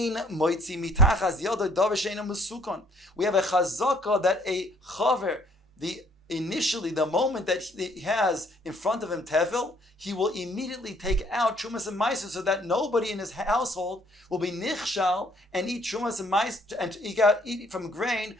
moitzi mitachas yado davar she'ein musukon. We have a chazaka that a chaver, initially, the moment that he has in front of him tevil, he will immediately take out trumas and maisros so that nobody in his household will be nichshal and eat trumas and maisros and eat from grain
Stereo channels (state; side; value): normal; both; correlation 0.63